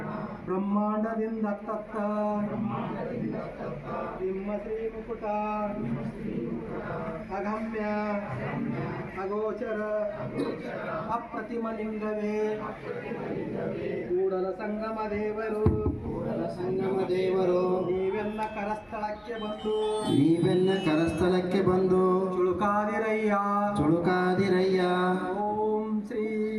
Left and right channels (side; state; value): both; identical; correlation 1.00